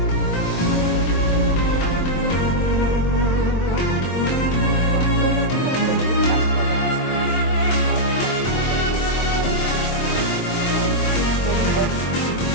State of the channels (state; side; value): late; right; 23 ms